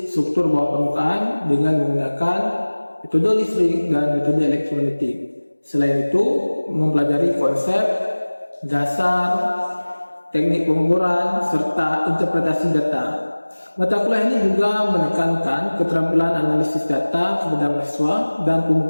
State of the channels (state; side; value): inverted; both; correlation -1.00